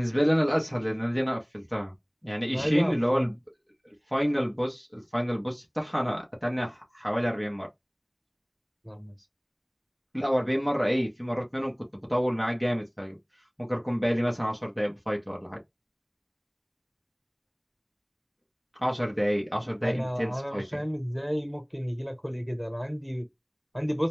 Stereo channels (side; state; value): both; identical; correlation 1.00